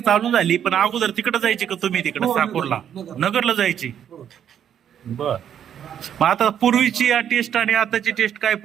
चालू झाली, पण अगोदर तिकडे जायची का तुम्ही तिकडे हो, साकोरला नगर. नगरला जायची? हो. बर. मग आता पूर्वीची टेस्ट आणि आताची टेस्ट काय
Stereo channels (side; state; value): left; quieter; 9.3 dB